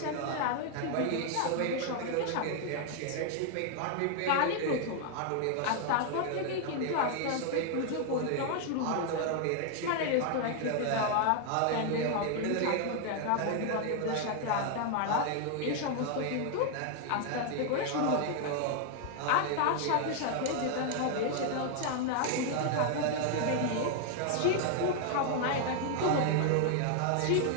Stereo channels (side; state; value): both; different; correlation 0.00